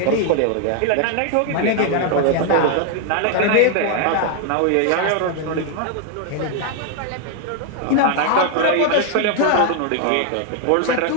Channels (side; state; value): both; different; correlation 0.00